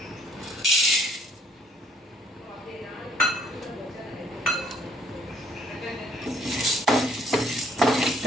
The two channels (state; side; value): normal; both; correlation 0.63